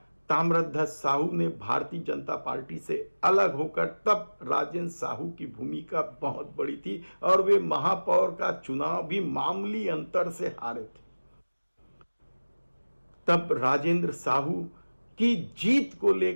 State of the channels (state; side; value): inverted; both; correlation -1.00